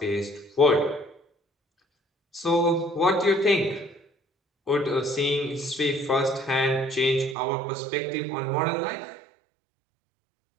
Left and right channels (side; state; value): left; drops out; at 7.4 s